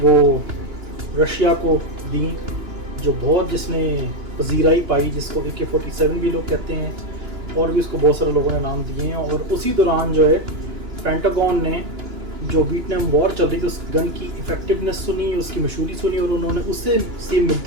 रशिया को दी, जो बहुत जिसने पजीराई पाई, जिसको AK-47 भी लोग कहते हैं और भी उसको बहुत सारे लोगों ने नाम दिए हैं। और उसी दौरान जो है पेंटागन ने जो वियतनाम वॉर चल रही थी उस गन की इफ़ेक्टिवनेस सुनी, उसकी मशहूरी सुनी और उन्होंने उससे सेम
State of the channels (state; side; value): late; left; 2.9 ms